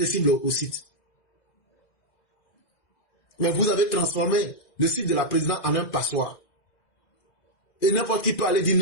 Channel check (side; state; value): right; late; 2.0 ms